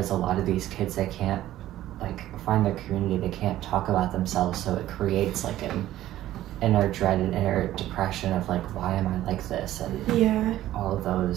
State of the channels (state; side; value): quieter; left; 13.9 dB